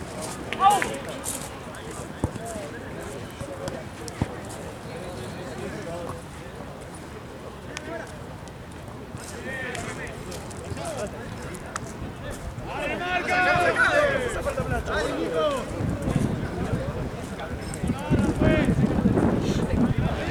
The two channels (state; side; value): identical; both; correlation 1.00